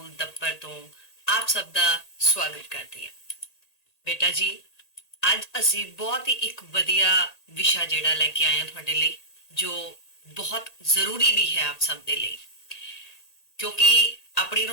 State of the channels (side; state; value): right; late; 1.8 ms